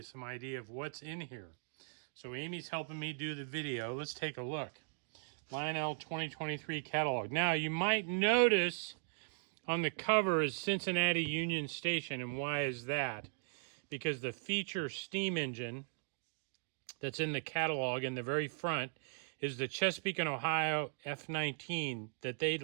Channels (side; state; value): left; silent; digital silence